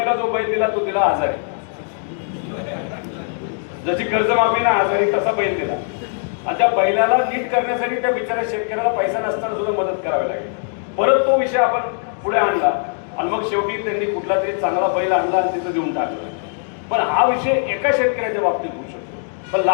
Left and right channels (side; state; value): right; silent; 65 dB below the other